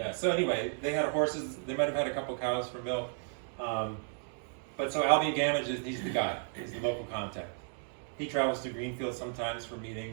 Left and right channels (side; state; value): left; silent; 55 dB below the other